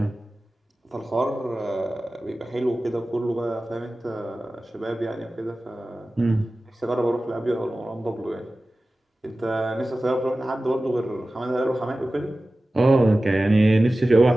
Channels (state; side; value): normal; both; correlation 0.96